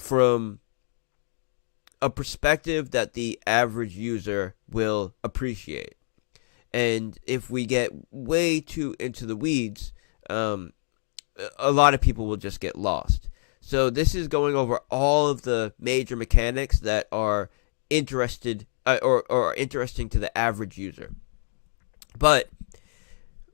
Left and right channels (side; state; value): right; silent; digital silence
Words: a perspective that the average user will appreciate. And if we get way too into the weeds, a lot of people will just get lost. So this is going over all of the major mechanics that are interested or interesting to the average user. But